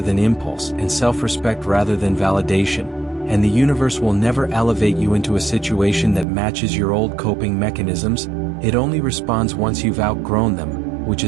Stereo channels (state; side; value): drops out; left; at 6.2 s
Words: than impulse, and self-respect rather than validation. And the universe will never elevate you into a situation that matches your old coping mechanisms. It only responds once you've outgrown them, which